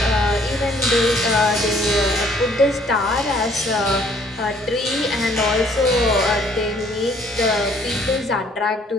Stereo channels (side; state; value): both; normal; correlation 0.61